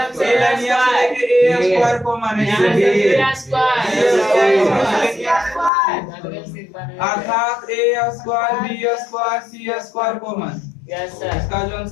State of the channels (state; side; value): drops out; right; at 5.7 s